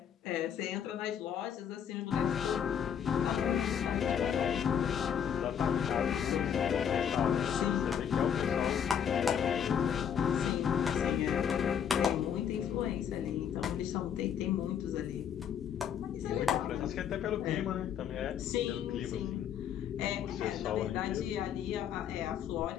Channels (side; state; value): right; quieter; 8.4 dB